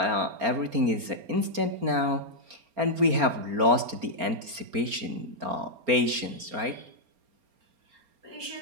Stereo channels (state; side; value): late; left; 4.3 ms